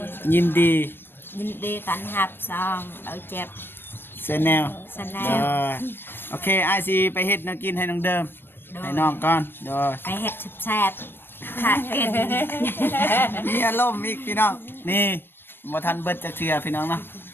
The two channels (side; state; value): right; late; 0.099 ms